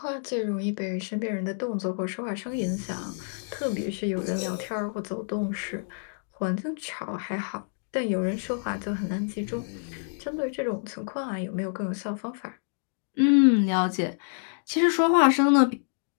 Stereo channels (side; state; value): right; silent; digital silence